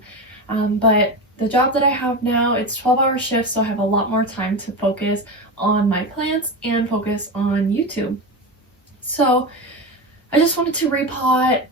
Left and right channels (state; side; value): normal; both; correlation 0.21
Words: But the job that I have now, it's 12-hour shifts, so I have a lot more time to focus on my plants and focus on YouTube. So I just wanted to repot